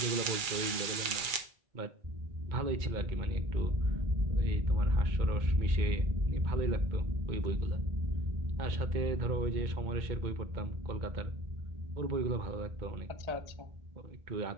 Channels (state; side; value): late; left; 2.3 ms